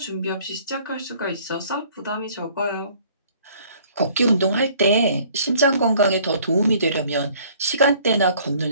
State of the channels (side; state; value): both; inverted; correlation -0.56